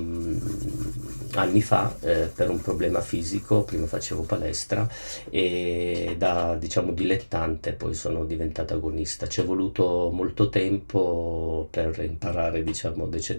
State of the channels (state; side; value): inverted; both; correlation -1.00